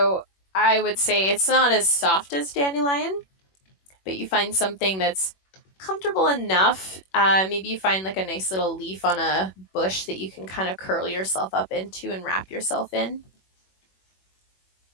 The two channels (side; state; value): right; late; 21 ms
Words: I would say it's not as soft as dandelion, but you find something that's comfortable enough. Maybe you find like a nice little leaf on a bush that you can kind of curl yourself up into and wrap yourself in.